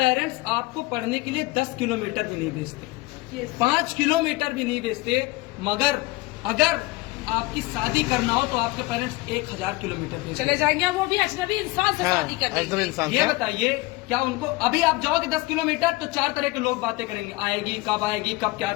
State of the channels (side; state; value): right; quieter; 21.6 dB